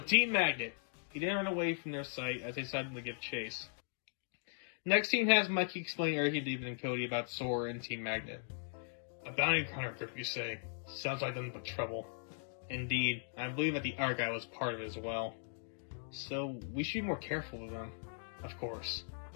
Team Magnet. He then ran away from their sight as they decided to give chase. Next scene has Mikey explain everything to David and Cody about Sora and Team Magnet. A bounty hunter group, you say? Sounds like nothing but trouble. Indeed, I believe that the art guy was part of it as well. So, we should be more careful with them. Of course.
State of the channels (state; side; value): silent; right; digital silence